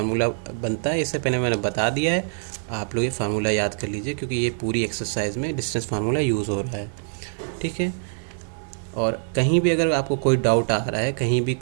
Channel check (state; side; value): silent; left; 61 dB below the other